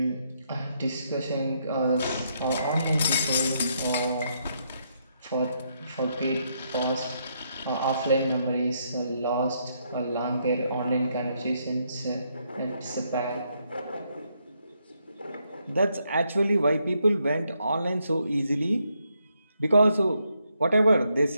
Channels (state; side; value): inverted; both; correlation -0.77